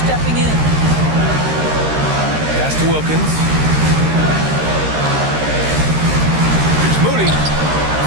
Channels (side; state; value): left; late; 13 ms